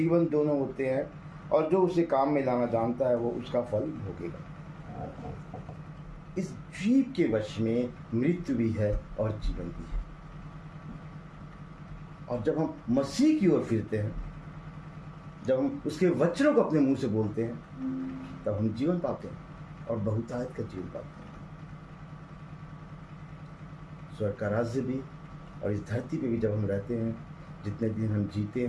दोनों होते हैं, और जो उसे काम में लाना जानता है वो उसका फल भोगेगा। इस जीव के वश में मृत्यु भी है और जीवन भी है। और जब हम मसीह की ओर फिरते हैं जब हम उसके वचनों को अपने मुंह से बोलते हैं तब हम जीवन पाते हैं और बहुतायत का जीवन पाते हैं। स्वर्ग का राज्य भी और इस धरती पे भी जब हम रहते हैं, जितने दिन हम जीते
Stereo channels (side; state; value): both; identical; correlation 1.00